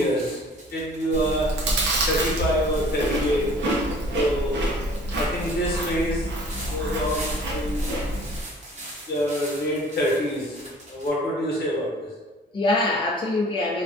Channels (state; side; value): normal; both; correlation 0.50